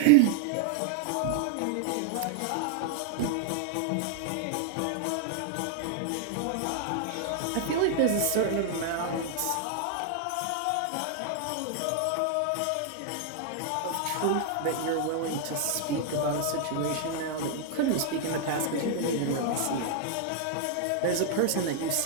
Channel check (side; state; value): both; different; correlation 0.00